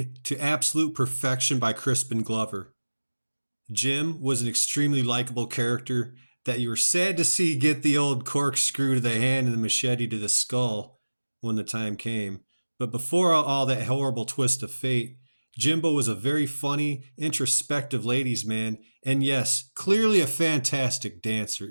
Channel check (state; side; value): inverted; both; correlation -1.00